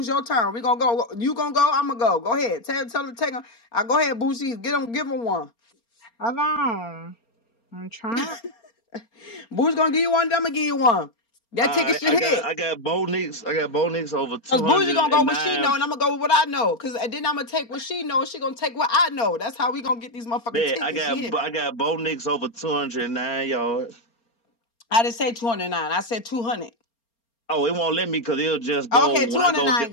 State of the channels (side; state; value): right; late; 4.3 ms